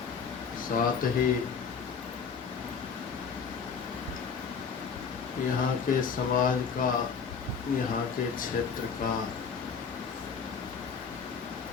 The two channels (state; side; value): quieter; right; 6.0 dB